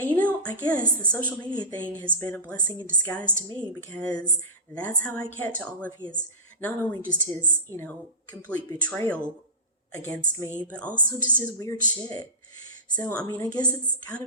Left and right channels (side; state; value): both; normal; correlation -0.19